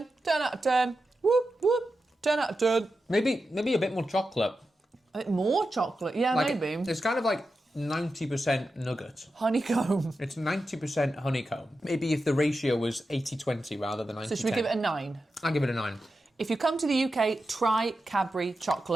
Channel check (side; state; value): both; normal; correlation 0.90